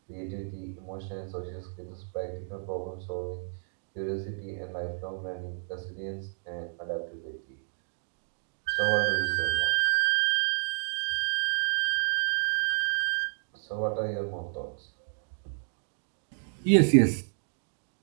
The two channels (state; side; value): silent; left; digital silence